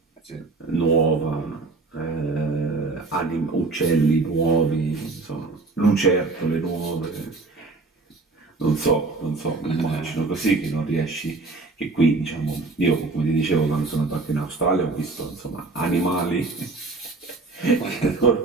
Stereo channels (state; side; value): quieter; left; 3.6 dB